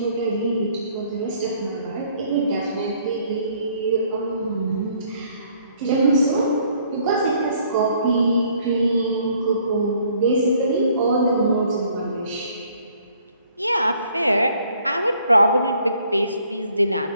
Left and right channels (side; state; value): both; inverted; correlation -0.62